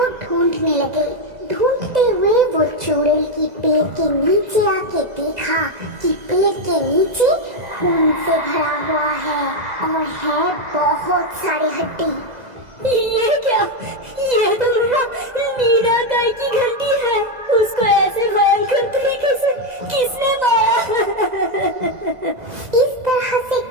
ढूंढने लगे। ढूंढते हुए वो चुड़ैल की पेड़ के नीचे आके देखा कि पेड़ के नीचे खून से भरा हुआ है और है बहुत सारे हड्डी। ये क्या? ये तो मेरा मीना गाय की घंटी है। उसको ऐसे भयंकर तरीके से किसने मारा? इस तरह से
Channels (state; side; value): late; left; 2.0 ms